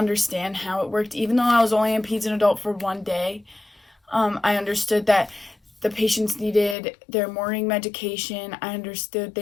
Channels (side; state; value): right; drops out; at 6.8 s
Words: how it worked. Even though I was only in peds and adult for 1 day, I understood that the patients needed their morning medication. I understood